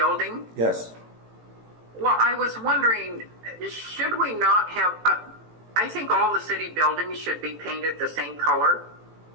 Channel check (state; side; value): late; left; 18 ms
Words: Yes. Well, I was wondering, should we not have, I think all the city buildings should be painted the same color.